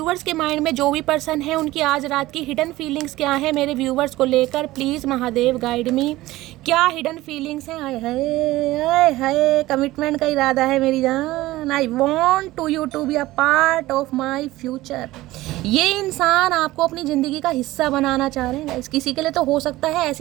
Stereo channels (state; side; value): quieter; left; 17.5 dB